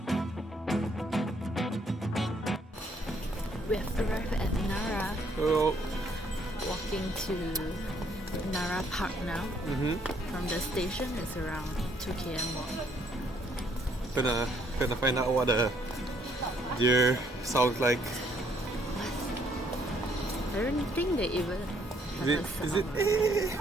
We have arrived at Nara. Oh. Walking to Nara Park now. From the station, it's around 2 km walk. Gonna find out what the deer sounds like. I don't think they even have a sound. Is it?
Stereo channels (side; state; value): both; normal; correlation 0.67